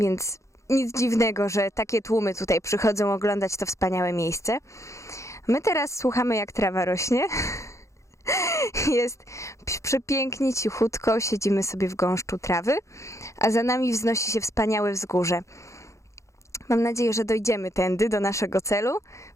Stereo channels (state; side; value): late; right; 0.15 ms